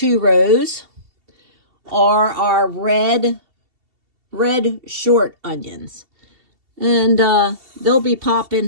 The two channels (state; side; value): late; left; 2.7 ms